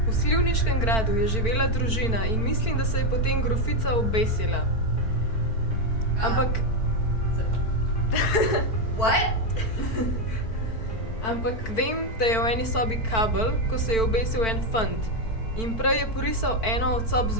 V Slivniškem gradu je živela družina in mislim, da se je potem grofica obesila. Ampak... What? Ampak vem, da je v eni sobi kabel, ko se je obesil en fant. In prej je porisal eno od sob z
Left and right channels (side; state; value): right; late; 4.5 ms